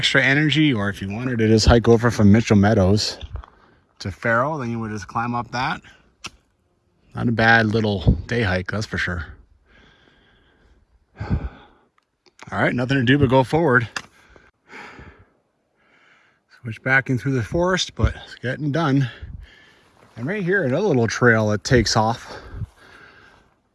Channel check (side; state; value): both; identical; correlation 1.00